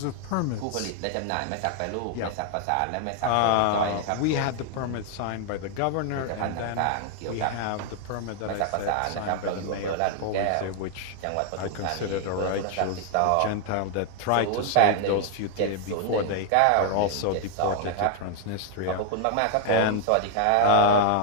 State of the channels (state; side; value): different; both; correlation 0.00